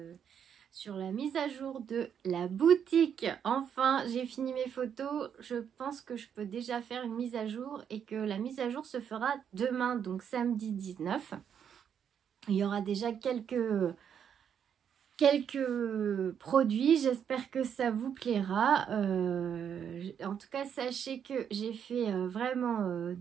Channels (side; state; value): left; quieter; 8.2 dB